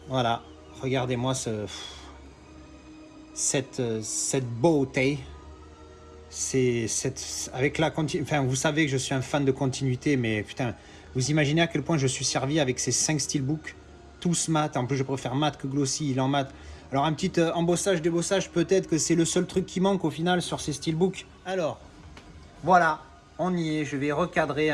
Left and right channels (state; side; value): identical; both; correlation 1.00